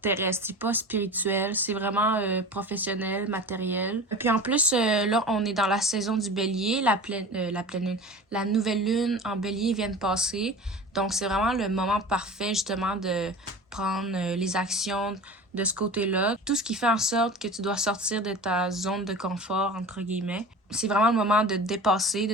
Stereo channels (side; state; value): both; normal; correlation 0.36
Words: C'est pas spirituel. C'est vraiment professionnel, matériel. Et puis en plus, là, on est dans la saison du bélier. La pleine lune. La nouvelle lune en bélier vient de passer. Donc, c'est vraiment le moment parfait, justement, de prendre les actions de ce côté-là. Tout ce qui fait en sorte que tu dois sortir de ta zone de confort, entre guillemets. C'est vraiment le moment de dépasser